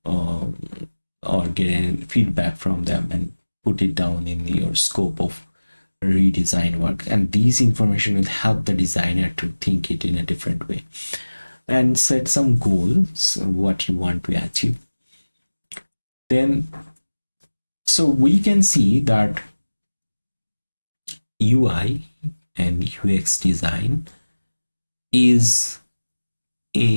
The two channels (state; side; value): inverted; both; correlation -1.00